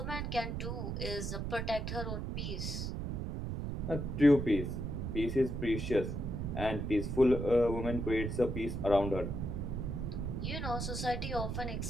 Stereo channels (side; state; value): right; noise; rumble, 3 dB below the sound